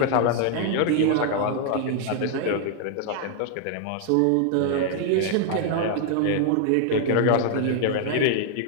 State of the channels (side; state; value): both; different; correlation 0.00